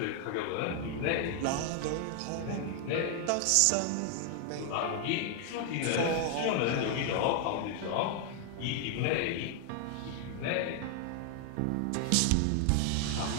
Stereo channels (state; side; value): different; both; correlation 0.00